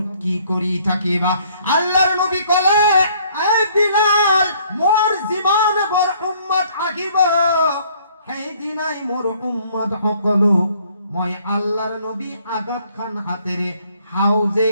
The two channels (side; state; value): both; inverted; correlation -0.62